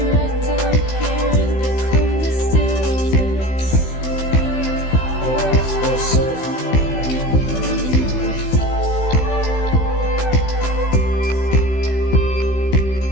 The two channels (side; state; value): right; late; 16 ms